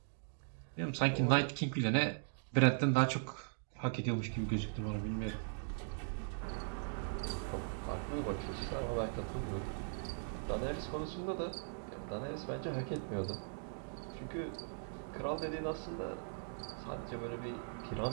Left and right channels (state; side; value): silent; left; digital silence